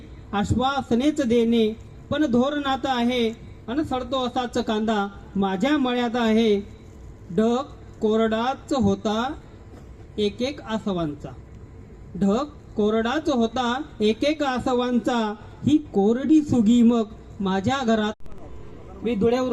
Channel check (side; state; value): both; identical; correlation 1.00